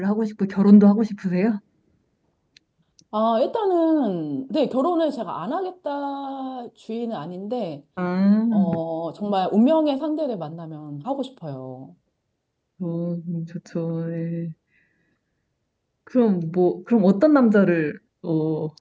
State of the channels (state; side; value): identical; both; correlation 1.00